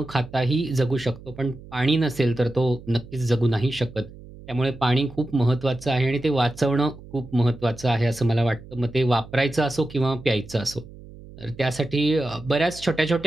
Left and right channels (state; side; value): noise; right; hum, 18 dB below the sound